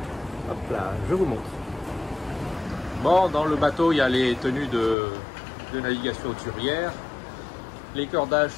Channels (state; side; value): drops out; right; at 5.0 s